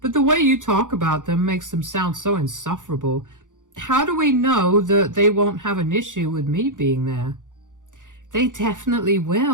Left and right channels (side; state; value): left; late; 0.87 ms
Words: the way you talk about them makes them sound so insufferable. How do we know that they won't have an issue with me being there?" "They definitely